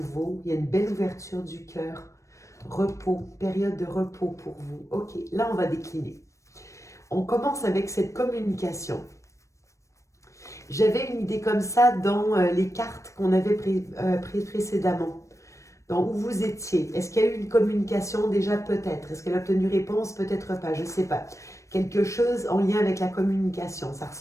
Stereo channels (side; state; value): right; late; 0.15 ms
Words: Il y a une belle ouverture du cœur. Repos, période de repos pour vous. Ok, là, on va décliner. On commence avec cette communication. J'avais une idée comme ça dans les cartes qu'on avait prises précédemment. Dans où vous étiez. Est-ce qu'il y a eu une communication déjà? Peut-être. Est-ce qu'elle a obtenu réponse? Peut-être pas, je ne sais pas. Quelque chose en lien avec la communication, ça